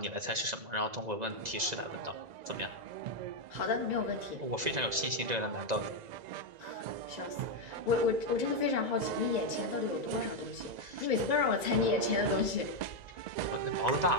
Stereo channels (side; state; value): left; late; 2.0 ms